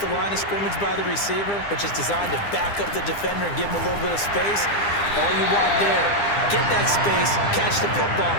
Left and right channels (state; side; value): late; right; 9.9 ms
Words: line of scrimmage by the receiver, which is designed to back up the defender and give him a little bit of space, all you want there, get that space, catch the football,